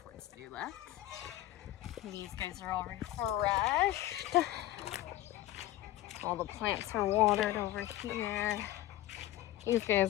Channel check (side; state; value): right; quieter; 14.9 dB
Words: tortoise to do left. These guys are all refreshed. All the plants are watered over here. These